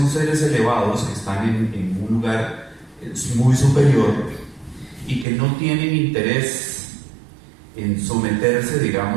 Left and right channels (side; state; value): left; drops out; at 5.2 s